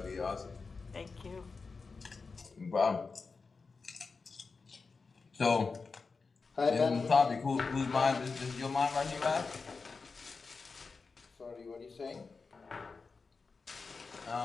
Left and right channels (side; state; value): right; quieter; 4.5 dB